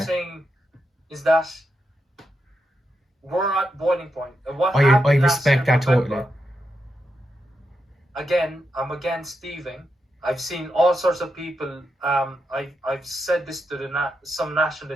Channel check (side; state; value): both; normal; correlation 0.85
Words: saying is that we're at boiling point. And what I happened last respect year, that totally. November, again, I'm against thieving. I've seen all sorts of people. I've said this to some